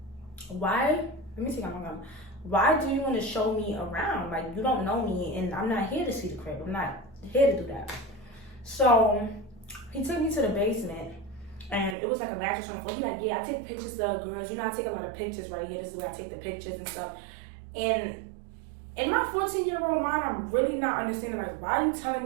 why? Let me see how I'm going. Why do you want to show me around? Like, you don't know me and I'm not here to see the crib. I'm not here to do that. So he took me to the basement. And it was like a mattress on the floor. He's like, yeah, I take pictures of girls. You know, I take a lot of pictures right here. This is where I take the pictures and stuff. And in my 14-year-old mind, I'm really not understanding, like, why are you telling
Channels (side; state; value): left; drops out; at 12.0 s